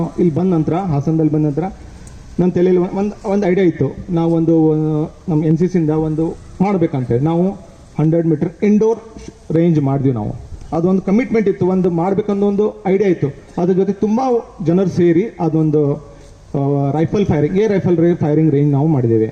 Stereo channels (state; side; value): identical; both; correlation 1.00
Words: ಇಲ್ಲಿ ಬಂದ ನಂತರ, ಹಾಸನದಲ್ಲಿ ಬಂದ ನಂತರ ನನ್ನ ತಲೆಯಲ್ಲಿ ಒಂದು ಐಡಿಯಾ ಇತ್ತು. ನಾವು ನಮ್ಮ NCCಯಿಂದ ಒಂದು ಮಾಡಬೇಕಂತೇಳಿ ನಾವು 100 ಮೀಟರ್ ಇಂಡೋರ್ ರೇಂಜ್ ಮಾಡಿದ್ವಿ. ನಾವು ಅದೊಂದು ಕಮಿಟ್ಮೆಂಟ್ ಇತ್ತು, ಒಂದು ಮಾಡಬೇಕನ್ನೋ ಒಂದು ಐಡಿಯಾ ಇತ್ತು. ಅದ್ರ ಜೊತೆ ತುಂಬ ಜನರು ಸೇರಿ ಅದೊಂದು ರೈಫಲ್ ಫೈರಿಂಗ್ ರೇಂಜ್ ನಾವು ಮಾಡಿದ್ದೇವೆ.